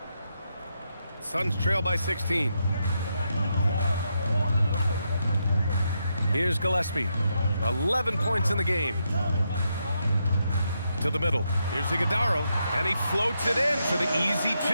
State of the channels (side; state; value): both; inverted; correlation -0.82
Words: Suns trail by 16. Here's Gillespie. 11 points in the game. To the middle. Here's Iguodala, and he floats it in for the easy